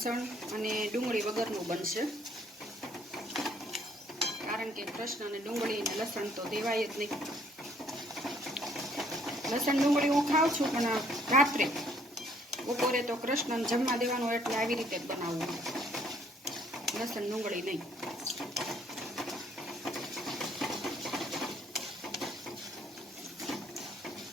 અને ડુંગળી વગરનું બનશે, કારણ કે કૃષ્ણ અને ડુંગળી અને લસણ તો દેવાય જ નહીં। લસણ ડુંગળી હું ખાઉં છું, પણ રાત્રે બપોરે તો કૃષ્ણને જમવા દેવાનું એટલે આવી રીતે જ બનાવવું, લસણ ડુંગળી નહીં।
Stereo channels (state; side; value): normal; both; correlation 0.64